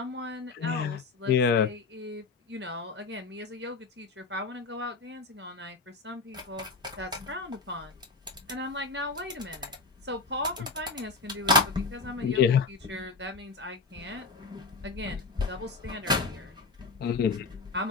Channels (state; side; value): quieter; right; 4.1 dB